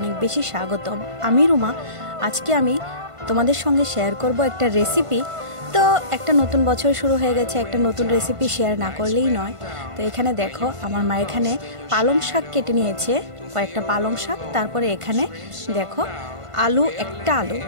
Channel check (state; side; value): late; left; 1.5 ms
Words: বেশি স্বাগতম। আমি রুমা। আজকে আমি তোমাদের সঙ্গে শেয়ার করব একটা রেসিপি। তো একটা নতুন বছর শুরু হয়ে গেছে, একটা নতুন রেসিপি শেয়ার না করলেই নয়। তো এখানে দেখো আমার মা এখানে পালং শাক কেটে নিয়েছে, কয়েকটা পালং শাক। তারপরে এখানে দেখো একটা